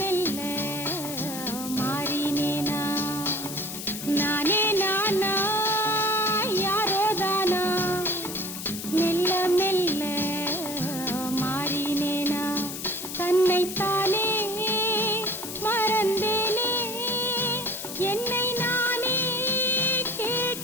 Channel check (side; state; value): left; noise; hiss, 8 dB below the sound